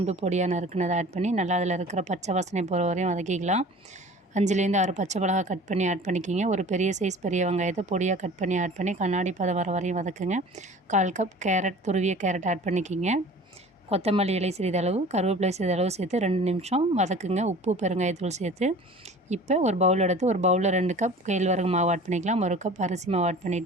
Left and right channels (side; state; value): both; normal; correlation 0.43